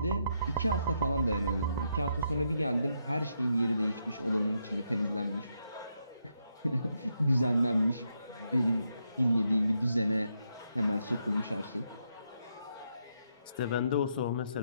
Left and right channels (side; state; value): both; inverted; correlation -0.80